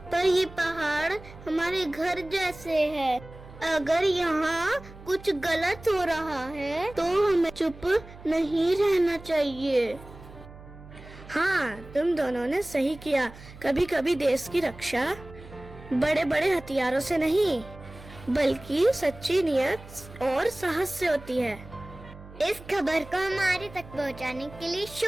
पर ये पहाड़ हमारे घर जैसे है। अगर यहाँ कुछ गलत हो रहा है तो हमें चुप नहीं रहना चाहिए। हाँ, तुम दोनों ने सही किया। कभी कभी देश की रक्षा बड़े बड़े हथियारों से नहीं, बल्कि सच्ची नियत और साहस से होती है। इस खबर को हमारे तक पहुंचाने के लिए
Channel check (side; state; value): right; noise; hum, 18 dB below the sound